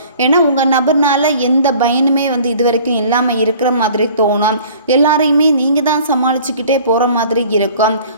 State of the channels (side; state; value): both; inverted; correlation -0.49